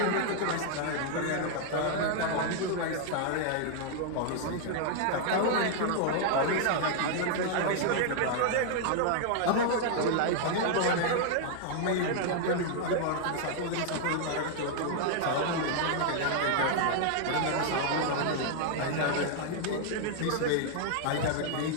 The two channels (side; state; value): both; different; correlation 0.00